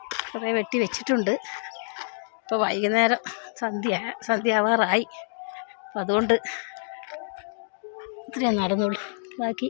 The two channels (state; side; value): silent; right; 60 dB below the other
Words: കുറേ വെട്ടി വെച്ചിട്ടുണ്ട്. ഇപ്പോൾ വൈകുന്നേരം സന്ധ്യ ആവാറായി. അപ്പം അതുകൊണ്ട് ഇത്രയും നടന്നുള്ളൂ. ബാക്കി